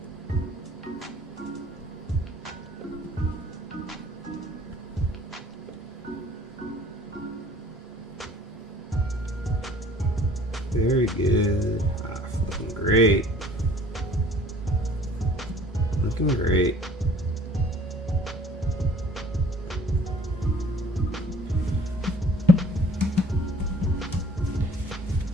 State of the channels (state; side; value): normal; both; correlation 0.52